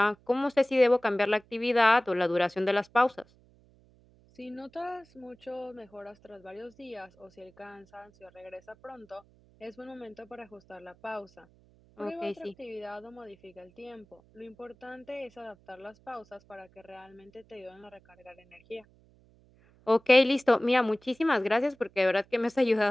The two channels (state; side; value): noise; right; hum, 29 dB below the sound